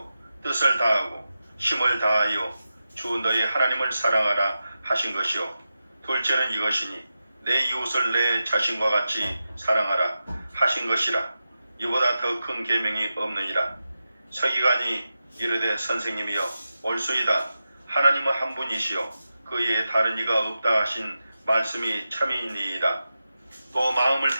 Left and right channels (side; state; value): both; inverted; correlation -0.92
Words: 뜻을 다하고 힘을 다하여 주 너의 하나님을 사랑하라 하신 것이요. 둘째는 이것이니 내 이웃을 내 자신과 같이 사랑하라 하신 것이라. 이보다 더 큰 계명이 없느니라. 서기관이 이르되 선생님이여 옳소이다. 하나님은 한 분이시요 그 외에 다른 이가 없다 하신 말씀이 참이니이다. 또 마음을